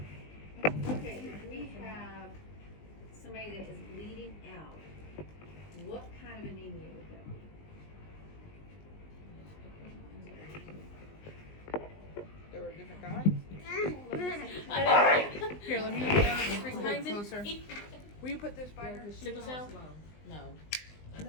Okay, if we have somebody that is bleeding out, what kind of anemia would that be? There were different kinds. Here, let me bring it closer. Will you put this by her? Sickle cell? No.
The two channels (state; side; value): late; right; 20 ms